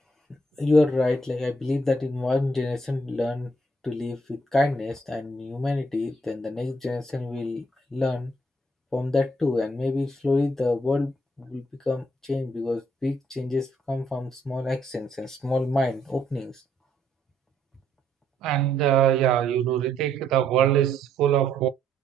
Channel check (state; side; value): normal; both; correlation 0.71